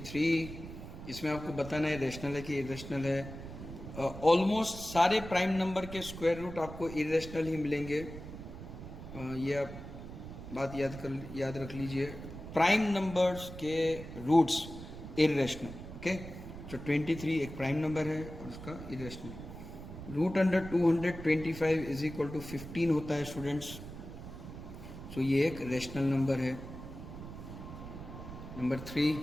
इसमें आपको बताना है रेशनल है कि इरेशनल है। ऑलमोस्ट सारे प्राइम नंबर के स्क्वायर रूट आपको इरेशनल ही मिलेंगे, ये आप बात याद रख लीजिए। प्राइम नंबर्स के रूट्स इरेशनल, ओके। तो 23 एक प्राइम नंबर है और उसका इरेशनल। √225 इज इक्वल टू 15 होता है स्टूडेंट्स, सो ये एक रेशनल नंबर है। नंबर 3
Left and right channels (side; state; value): right; noise; rumble, 11 dB below the sound